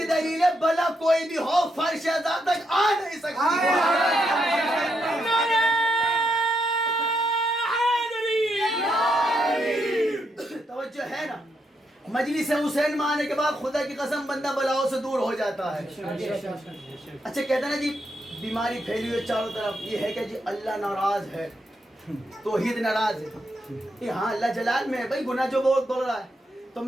دلیل ہے بلا کوئی بھی ہو فرش ذات تک آ نہیں سکتی. توجہ ہے نا, مجلس حسین میں آنے کے بعد خدا کی قسم بندہ بلاؤں سے دور ہو جاتا ہے. اچھا کہتے ہیں نا جی بیماری پھیلی ہوئی چاروں طرف, یہ ہے کہ جی اللہ ناراض ہے, توحید ناراض ہے. ہاں اللہ جلال میں ہے بھائی, گناہ جو بہت بول رہا ہے. تو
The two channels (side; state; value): both; normal; correlation 0.80